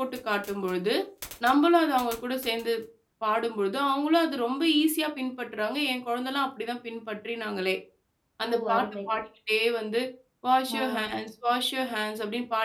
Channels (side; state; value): both; identical; correlation 1.00